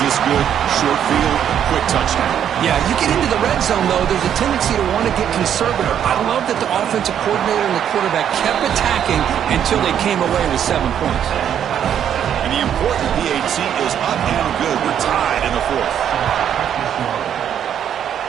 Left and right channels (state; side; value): quieter; left; 9.4 dB